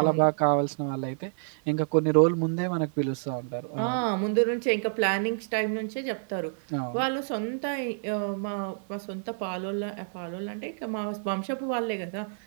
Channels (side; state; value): left; silent; 59 dB below the other